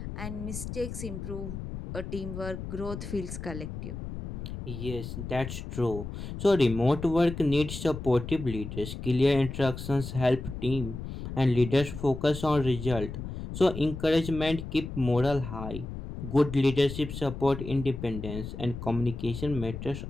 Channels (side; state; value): left; noise; rumble, 8 dB below the sound